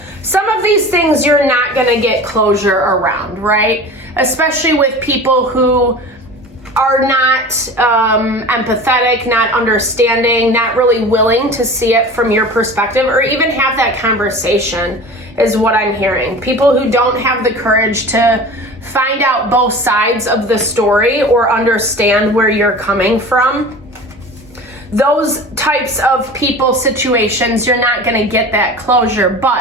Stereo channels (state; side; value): normal; both; correlation 0.37